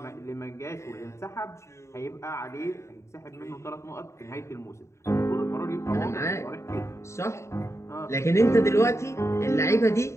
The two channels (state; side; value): late; right; 0.14 ms